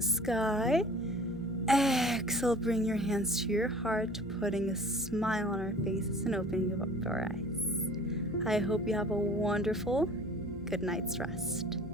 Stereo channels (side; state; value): both; normal; correlation 0.47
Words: sky. Exhale, bring your hands to your heart, putting a smile on our faces and opening up our eyes. I hope you have a wonderful good night's rest.